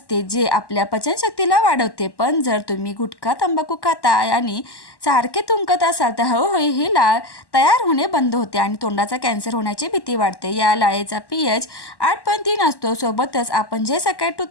जे आपल्या पचनशक्तीला वाढवते। पण जर तुम्ही गुटखा, तंबाखू खाता आणि सारखे थुंकत असाल तर हळूहळू ही लाळ तयार होणे बंद होते आणि तोंडाचा कॅन्सर होण्याची भीती वाढते। या लाळेचा pH 8.3 असतो। सोबतच आपण जे सकाळी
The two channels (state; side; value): late; right; 1.1 ms